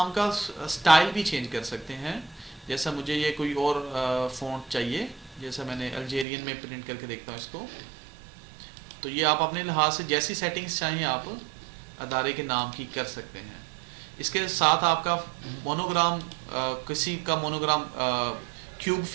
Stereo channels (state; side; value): drops out; left; at 6.2 s